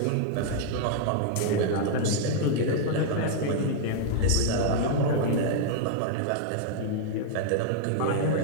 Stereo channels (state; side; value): different; both; correlation -0.01